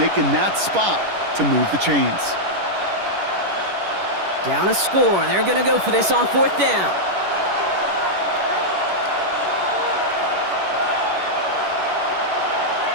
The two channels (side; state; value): left; late; 11 ms